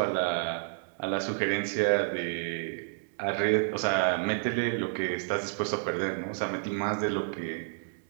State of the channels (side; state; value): left; silent; digital silence